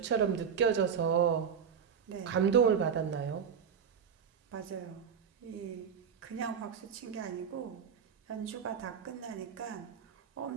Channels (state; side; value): quieter; left; 7.2 dB